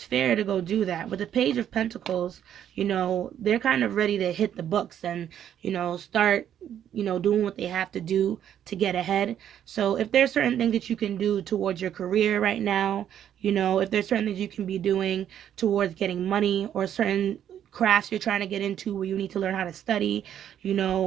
fair to go do that. With the Page of Pentacles, they're kind of ready to hit the books and, start, doing what they have to do to get ahead. So if there's certain things that you can do towards your career right now, if there's certain things you can be doing towards getting money, or certain crafts you're trying to get into where you need to learn how to study,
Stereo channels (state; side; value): quieter; left; 10.0 dB